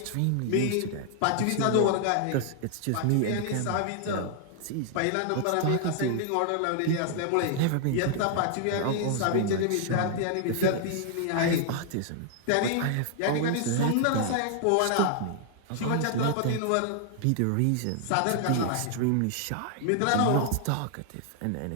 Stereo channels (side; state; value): both; different; correlation 0.00